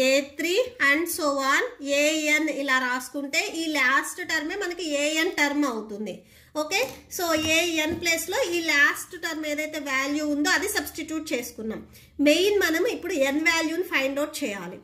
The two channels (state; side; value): identical; both; correlation 1.00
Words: A3 and so on AN ఇలా రాసుకుంటే ఈ లాస్ట్ టర్మే మనకి ఏఎన్ టర్మ్ అవుతుంది. ఓకే, సో ఏఎన్ ప్లేస్లో ఈ లాస్ట్ టర్మ్ ఏదైతే వాల్యూ ఉందో అది సబ్స్టిట్యూట్ చేసుకున్నాం. మెయిన్ మనం ఇప్పుడు ఎన్ వాల్యూని ఫైండ్ అవుట్ చేయాలి.